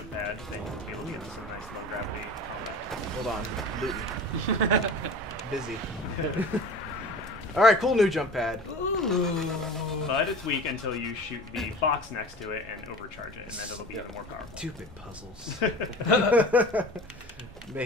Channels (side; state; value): both; normal; correlation 0.37